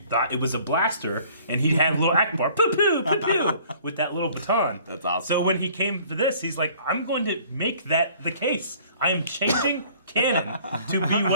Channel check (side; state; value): both; inverted; correlation -0.54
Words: thought it was a blaster, and he had a little Akbar, poo poo, poo poo, with that little baton. That's awesome. So when he came to this, he's like, I'm going to make that the case. I am changing canon to be